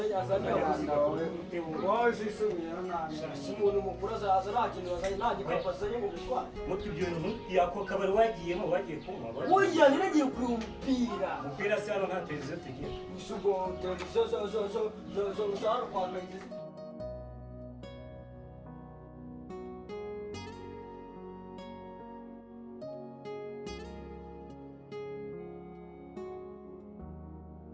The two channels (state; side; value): identical; both; correlation 1.00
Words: abana wawe zisubira umuntu mukuru azaza nta kintu azanye nta gikapu azanye mu gutwara mutwe ibyo bintu yako kabari wagiyemo wagiye kunywa oya niragiye kureba umupira se hano nta televiziyo tugira isugo televiziyo zo hano kwa kayitesi